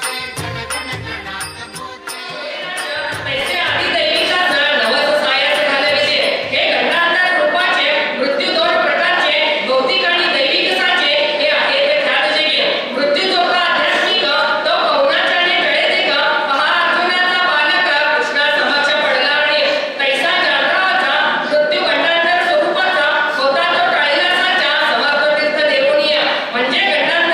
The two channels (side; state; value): both; identical; correlation 1.00